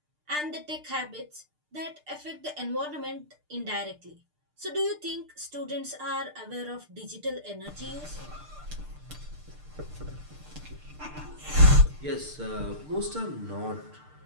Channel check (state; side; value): late; left; 6.6 ms